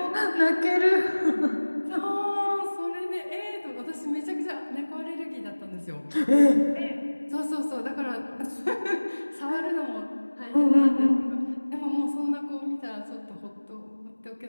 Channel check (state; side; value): inverted; both; correlation -1.00